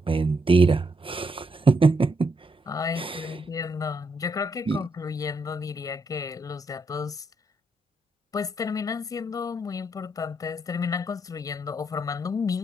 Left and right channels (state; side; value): normal; both; correlation 0.78